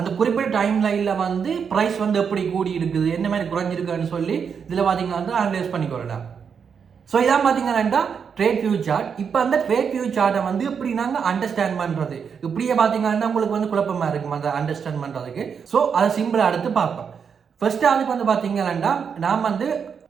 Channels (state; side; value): quieter; left; 6.7 dB